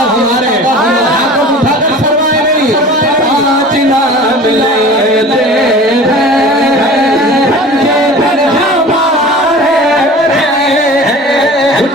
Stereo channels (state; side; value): normal; both; correlation 0.41